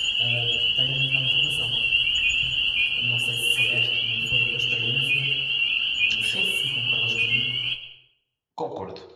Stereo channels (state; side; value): identical; both; correlation 1.00